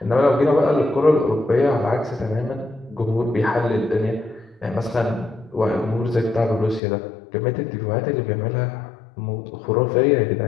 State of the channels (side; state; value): right; drops out; at 6.8 s